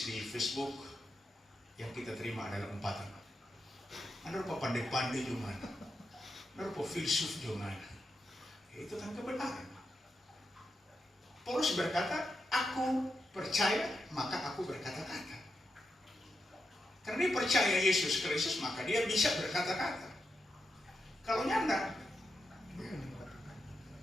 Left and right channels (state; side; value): normal; both; correlation 0.86